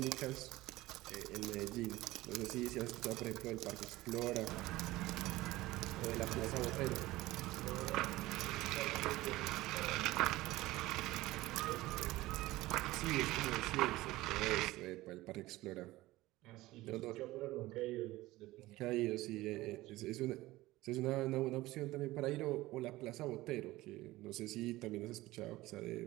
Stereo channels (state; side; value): quieter; left; 18.2 dB